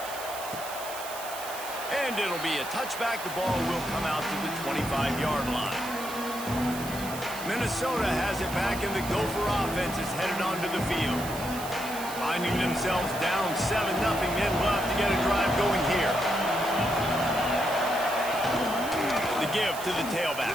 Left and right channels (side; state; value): right; noise; hiss, 11 dB below the sound